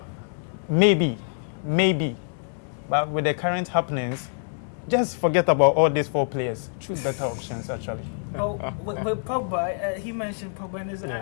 maybe. But with the current happenings, just forget about all these 4 players. Choose better options, actually. Oh, with Pogba, he mentioned Pogba, and it's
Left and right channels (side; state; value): right; silent; digital silence